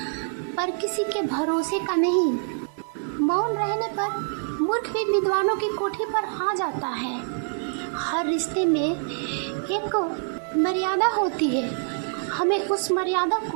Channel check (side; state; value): left; silent; 61 dB below the other